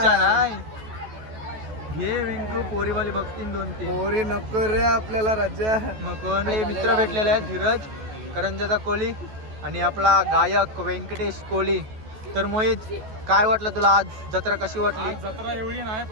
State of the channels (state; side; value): late; left; 14 ms